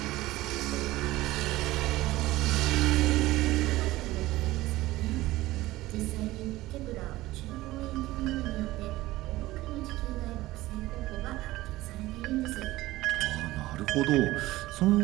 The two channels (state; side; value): quieter; left; 17.6 dB